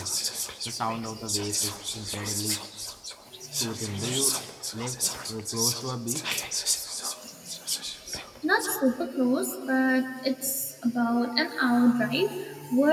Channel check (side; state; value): both; identical; correlation 1.00